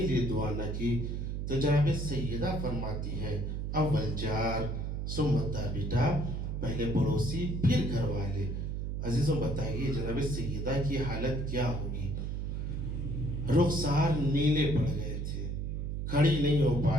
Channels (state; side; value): noise; right; hum, 2 dB below the sound